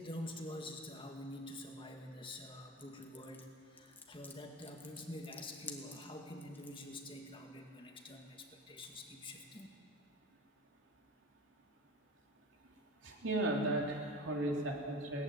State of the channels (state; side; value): normal; both; correlation 0.33